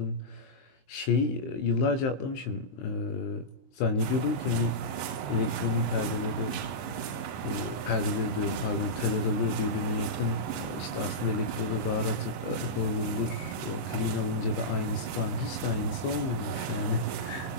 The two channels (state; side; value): late; right; 23 ms